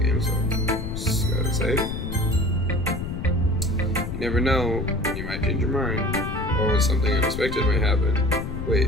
game, so just gotta save. You never know when you might change your mind, or when something unexpected might happen.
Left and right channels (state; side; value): noise; left; rumble, 5 dB below the sound